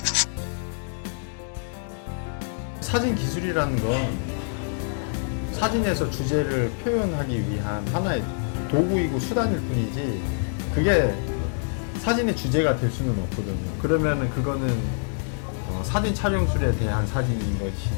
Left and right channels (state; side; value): silent; right; digital silence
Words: 사진 기술이라는 건 사진에서 주제를 표현하기 위한 하나의 도구이고 수단일 뿐이지, 그게 사진의 주제가 될 수는 없거든요. 그러면은 그거는 사진 촬영술에 대한 사진인